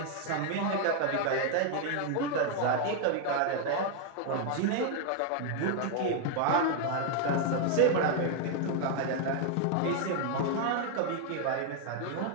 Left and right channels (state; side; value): different; both; correlation 0.00